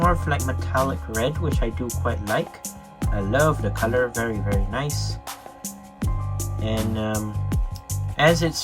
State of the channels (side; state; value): both; identical; correlation 1.00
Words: of like metallic red, which I do quite like. I love the color, very nice. And as